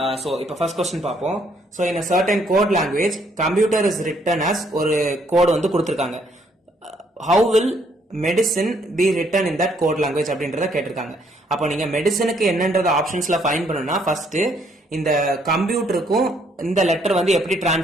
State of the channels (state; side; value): normal; both; correlation 0.68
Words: So இப்ப ஃபர்ஸ்ட் क्वेश्चन பாப்போம். So in a certain code language, computer is written as ஒரு கோட் வந்து கொடுத்திருக்காங்க. How will medicine be written in that code language அப்படின்றத கேட்டிருக்காங்க. அப்போ நீங்க மெடிசனுக்கு என்னன்றத ஆப்ஷன்ஸ்ல ஃபைண்ட் பண்ணணும்னா ஃபர்ஸ்ட் இந்த கம்ப்யூட்டருக்கும் இந்த லெட்டர் வந்து எப்படி